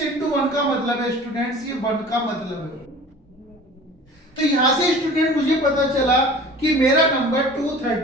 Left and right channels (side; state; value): both; normal; correlation 0.43